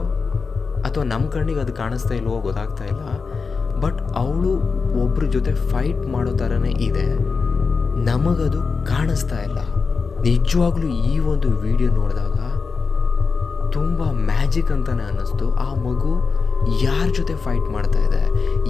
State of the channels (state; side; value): quieter; right; 4.9 dB